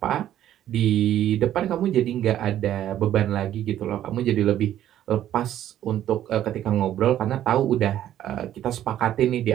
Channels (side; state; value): left; quieter; 11.8 dB